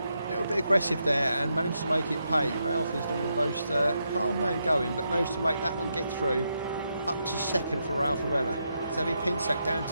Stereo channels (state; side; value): inverted; both; correlation -0.82